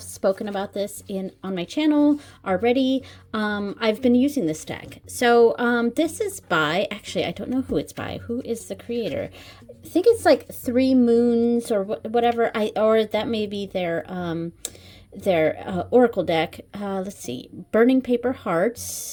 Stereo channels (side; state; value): both; identical; correlation 1.00